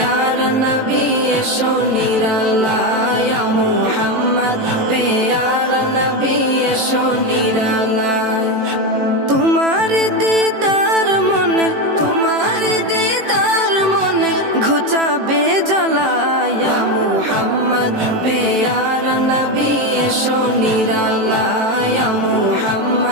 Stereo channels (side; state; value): left; late; 18 ms